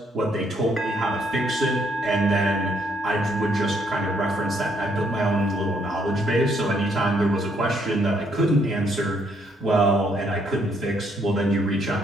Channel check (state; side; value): normal; both; correlation 0.70